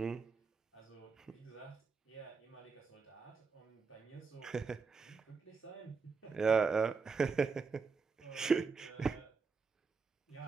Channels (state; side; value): quieter; left; 5.0 dB